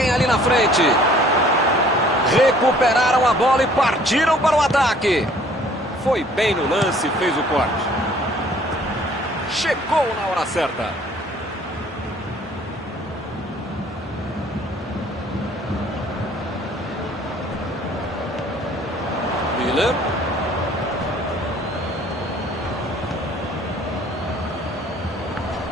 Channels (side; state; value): both; normal; correlation 0.56